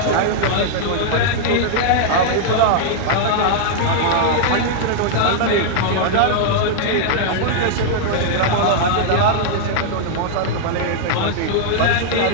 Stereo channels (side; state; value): both; different; correlation -0.01